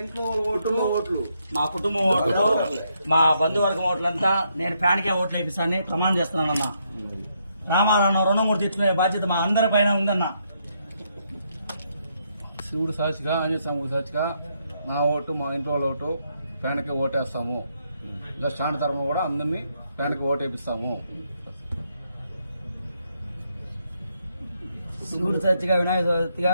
మా కుటుంబం ఓట్లు మా బంధువర్గం ఓట్లంతా నేను ఫ్యాన్కే ఓట్లు వేపిస్తానని ప్రమాణం చేస్తున్నానన్నా. రామారావు రుణమూర్తి తెచ్చుకునే బాధ్యత మా అందరి పైన ఉందన్నా. శివుడు సాక్షిగా ఆంజనేయ స్వామి సాక్షిగా నా ఓటు మా ఇంట్లో వాళ్ళ ఓటు ఫ్యాన్కి ఓటేస్తాము. ఇంకా స్టాండ్ తరఫున కూడా అందరినీ ఫ్యాన్కి ఓటేపిస్తాము. శివుడు సాక్షిగా వినాయక చవితిగా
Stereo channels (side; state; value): both; inverted; correlation -0.76